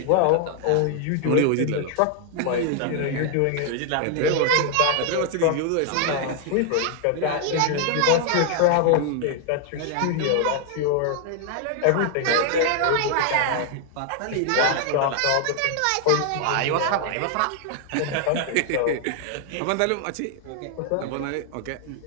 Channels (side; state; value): both; different; correlation 0.00